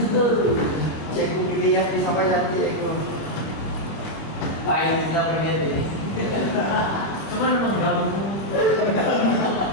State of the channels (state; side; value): late; right; 25 ms